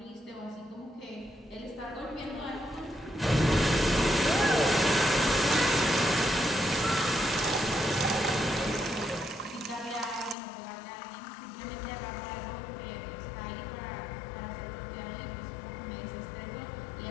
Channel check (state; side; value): drops out; right; at 10.4 s